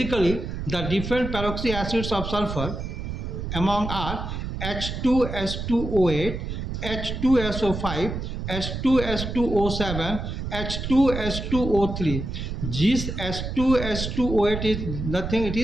the different peroxy acids of sulfur among are H2S2O8, H2SO5, H2S2O7, H2S2O3. This H2S2O8 is nothing, it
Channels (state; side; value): noise; right; rumble, 5 dB below the sound